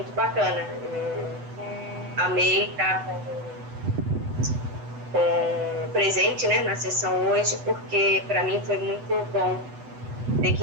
bacana. Amei estar com presente, né, na sessão hoje, porque para mim foi muito bom ter que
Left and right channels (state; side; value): late; left; 8.0 ms